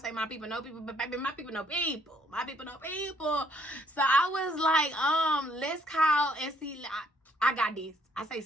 my people know people. But baby, my people know people. My people know people. So I was like, let's call and see. I got this. I say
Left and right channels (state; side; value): normal; both; correlation 0.67